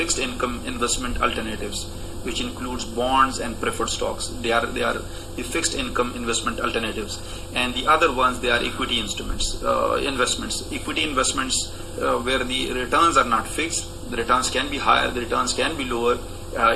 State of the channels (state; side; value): identical; both; correlation 1.00